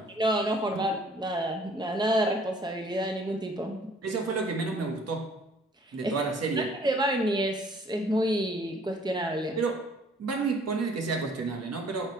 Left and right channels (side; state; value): both; normal; correlation 0.57